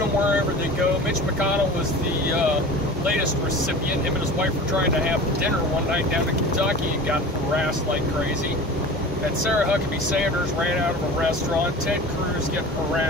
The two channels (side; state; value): both; normal; correlation 0.37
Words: wherever they go. Mitch McConnell was the latest recipient. Him and his wife were trying to have dinner one night down in Kentucky and got harassed like crazy. And Sarah Huckabee Sanders ran out of a restaurant. Ted Cruz getting